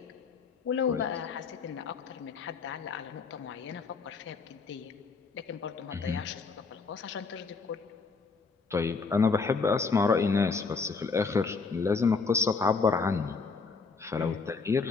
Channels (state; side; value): quieter; right; 4.6 dB